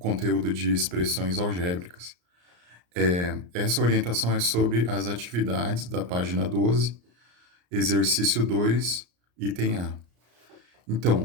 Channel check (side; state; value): left; late; 34 ms